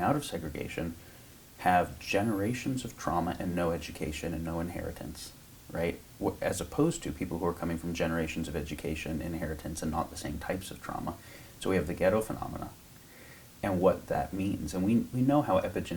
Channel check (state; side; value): identical; both; correlation 1.00